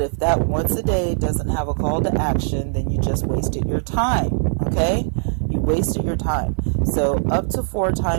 if that once a day doesn't have a call to action, then you just wasted your time, okay? You wasted your time. So up to 4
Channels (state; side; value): silent; left; 60 dB below the other